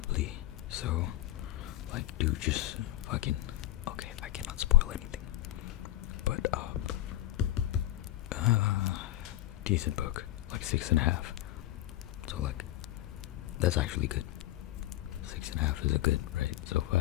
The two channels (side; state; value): right; quieter; 15.2 dB